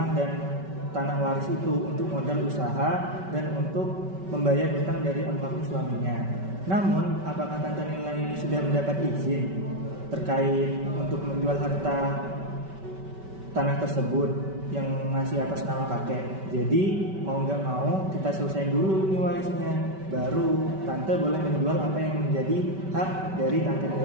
dan tanah waris itu untuk modal usaha dan untuk membayar hutang dari almarhum suaminya. Namun, apakah Tante Nila ini sudah mendapat izin terkait untuk menjual harta tanah tersebut yang masih atas nama kakek? Jadi mau nggak mau kita selesaiin dulu nih warisnya, baru Tante boleh menjual apa yang menjadi hak dari Tante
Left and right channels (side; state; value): left; late; 5.2 ms